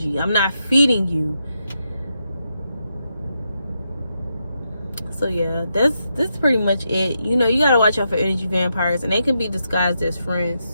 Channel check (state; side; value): inverted; both; correlation -0.83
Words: I'm not feeding you. So yeah, that's pretty much it. You know, you gotta watch out for energy vampires, and they can be disguised as